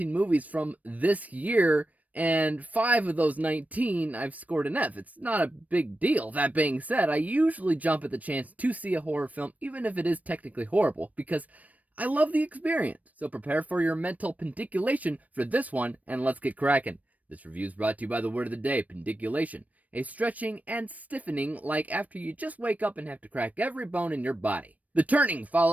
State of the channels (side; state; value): left; late; 0.072 ms